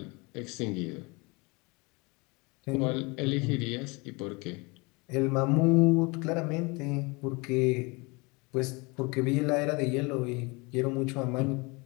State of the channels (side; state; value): right; quieter; 27.4 dB